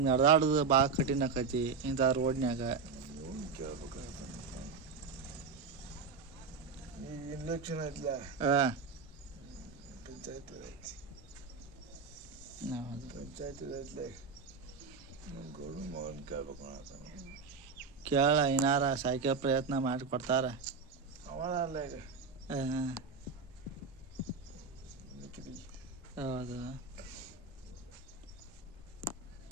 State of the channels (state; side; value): quieter; left; 5.1 dB